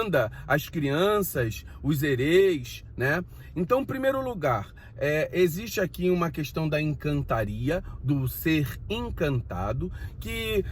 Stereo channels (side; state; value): both; identical; correlation 1.00